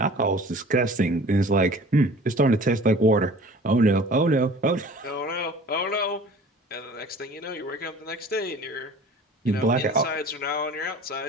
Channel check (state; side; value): normal; both; correlation 0.46